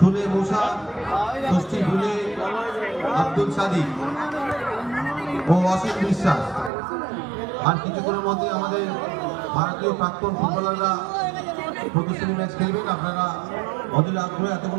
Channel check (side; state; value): left; drops out; at 6.7 s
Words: মুসা, ষষ্ঠী ফুলে, আব্দুল সাদিক ও অসীম বিশ্বাস। আর কিছুক্ষণের মধ্যে আমাদের ভারতীয় প্রাক্তন ফুটবলাররা প্রদর্শনী ম্যাচ খেলবেন। আপনারা অধীর আগ্রহে এতক্ষণ